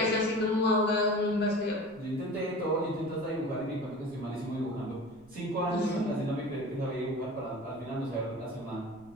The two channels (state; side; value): noise; right; rumble, 27 dB below the sound